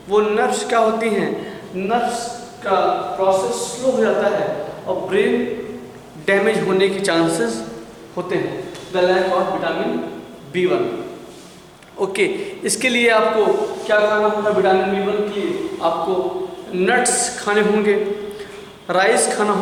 वो नर्व्स क्या होती हैं? नर्व्स का प्रोसेस स्लो हो जाता है और ब्रेन डैमेज होने के चांसेस होते हैं। The lack of vitamin B1। Okay, इसके लिए आपको क्या खाना होगा? विटामिन B1 के लिए आपको नट्स खाने होंगे, राइस खाना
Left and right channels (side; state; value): both; identical; correlation 1.00